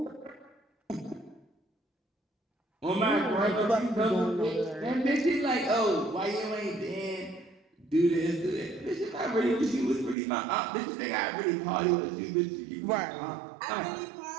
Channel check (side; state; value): left; drops out; at 10.2 s